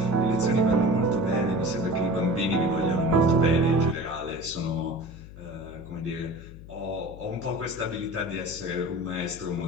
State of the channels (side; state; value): left; noise; hum, 16 dB below the sound